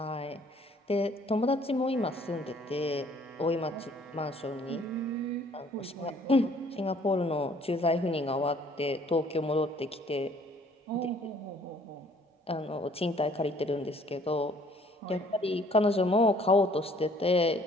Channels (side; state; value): both; normal; correlation 0.59